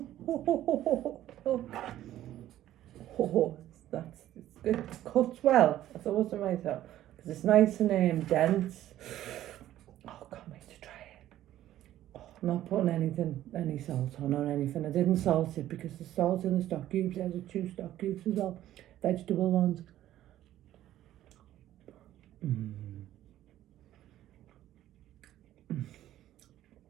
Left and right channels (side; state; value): left; quieter; 13.2 dB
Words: It's good. It cuts well. I thought to myself, because it's nice and dense. Oh, can't wait to try it. Oh, I'm not putting any salt on or anything. I didn't salt it because the salt in the stock cubes, there's 2 stock cubes as well, vegetable ones.